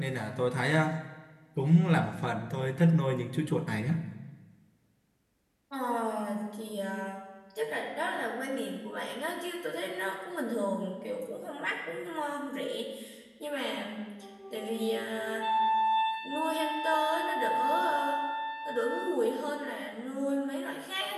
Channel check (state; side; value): identical; both; correlation 1.00